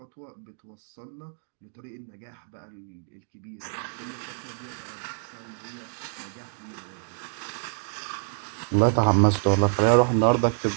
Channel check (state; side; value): silent; left; digital silence